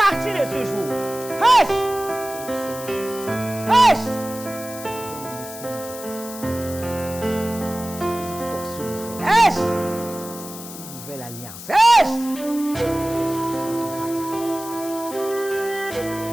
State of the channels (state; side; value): noise; left; hiss, 13 dB below the sound